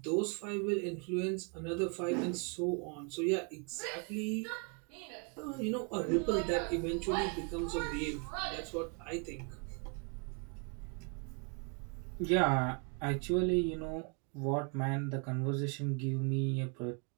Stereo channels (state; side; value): quieter; left; 36.1 dB